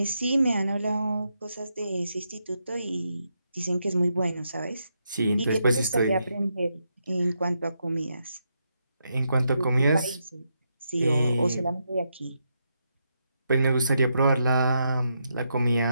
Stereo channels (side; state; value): both; inverted; correlation -0.82